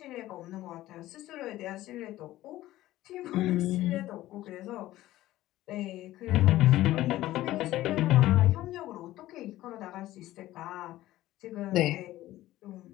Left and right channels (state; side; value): quieter; right; 15.5 dB